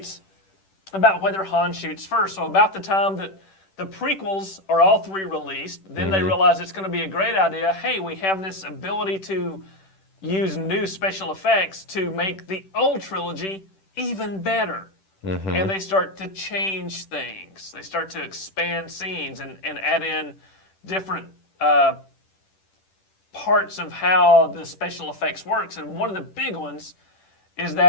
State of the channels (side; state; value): right; late; 10 ms